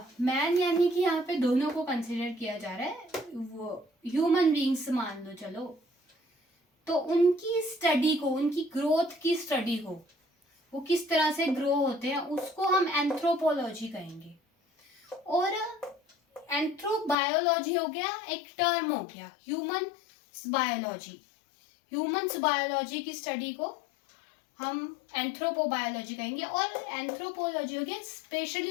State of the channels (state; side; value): drops out; right; at 17.2 s